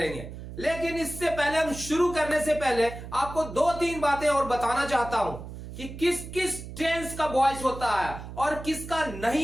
लेकिन इससे पहले, हम शुरू करने से पहले आपको दो तीन बातें और बताना चाहता हूं कि किस किस टेंस का वॉइस होता है और किसका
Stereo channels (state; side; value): noise; right; hum, 11 dB below the sound